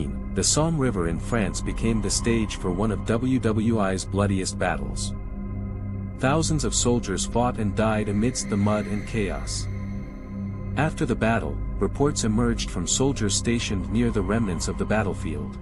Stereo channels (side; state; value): both; identical; correlation 1.00